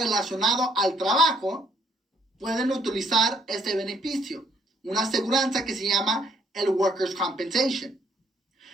al trabajo, pueden utilizar este beneficio, una aseguranza que se llama el Workers' Compensation.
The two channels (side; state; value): both; normal; correlation 0.66